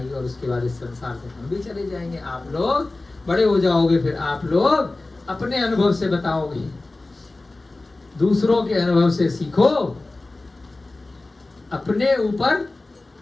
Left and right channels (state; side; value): quieter; right; 3.1 dB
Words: और उसके बाद इस संसार से हम भी चले जाएंगे। आप लोग बड़े हो जाओगे, फिर आप लोग अपने अनुभव से बताओगे, दूसरों के अनुभव से सीखो, अपने ऊपर